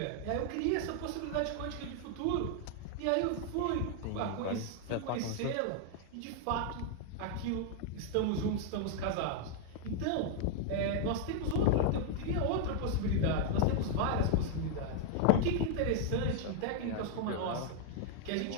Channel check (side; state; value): both; different; correlation 0.00